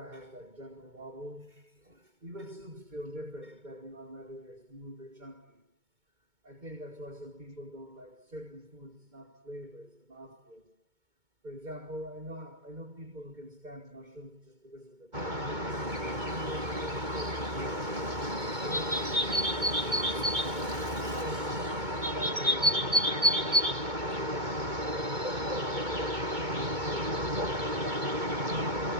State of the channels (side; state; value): left; late; 2.2 ms